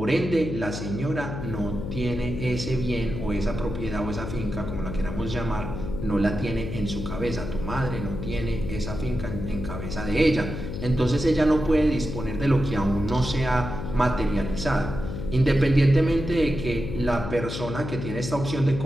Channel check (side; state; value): left; noise; hum, 6 dB below the sound